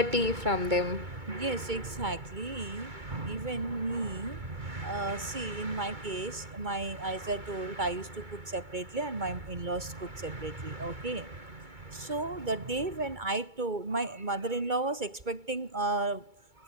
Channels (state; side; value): late; left; 2.2 ms